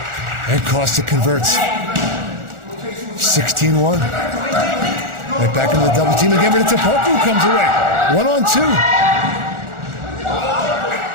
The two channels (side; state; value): left; late; 1.4 ms